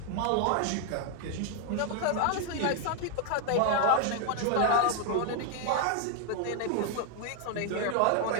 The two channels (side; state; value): both; different; correlation 0.00